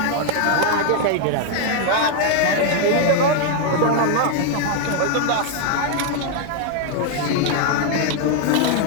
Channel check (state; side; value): different; both; correlation 0.00